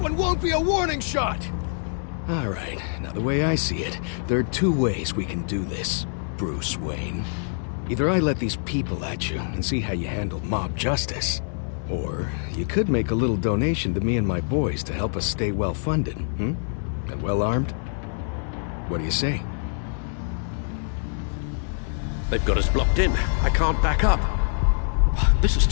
won't be a warning shot! Alright, now the way I see it, there are 2 ways we can do this, Bruce Wayne. Either I let these people at you and see how you handle mob justice, or you could make a little donation to me and my boys to help us stay well-funded, And well-armed? What do you say? They've got us blocked in. I can't back up. This is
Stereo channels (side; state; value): right; silent; digital silence